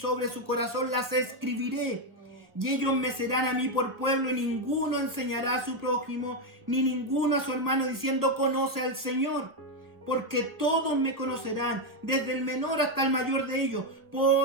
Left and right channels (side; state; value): left; late; 1.1 ms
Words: su corazón las escribiré. Y ellos me serán a mí por pueblo, y ninguno enseñará a su prójimo, ni ninguno a su hermano, diciendo, conoce al Señor. Porque todos me conocerán, desde el menor hasta el mayor de ellos,